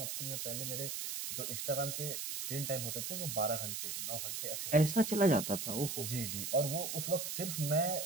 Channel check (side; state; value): right; noise; hiss, 4 dB below the sound